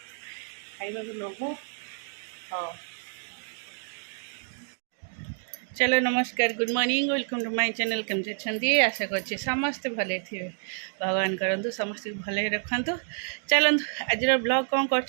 खाइबा को लोभ हाँ चलो नमस्कार good morning welcome to my channel केमती अच्छे आशा करछे समस्ते भले थे भगवान करंतु समस्त भले रखंतु चलंतु आज ब्लॉग कौन कर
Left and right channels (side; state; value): left; silent; 57 dB below the other